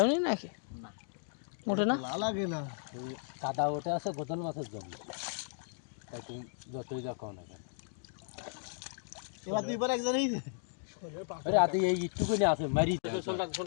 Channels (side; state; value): right; silent; digital silence